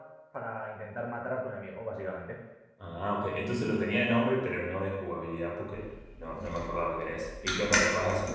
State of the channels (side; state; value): both; identical; correlation 1.00